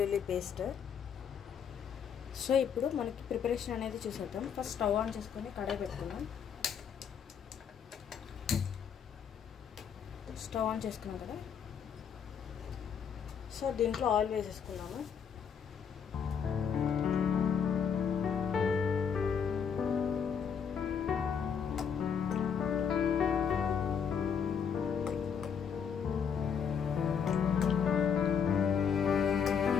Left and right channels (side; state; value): right; quieter; 7.2 dB